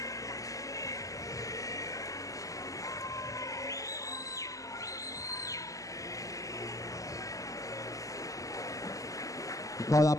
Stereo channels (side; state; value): right; late; 0.16 ms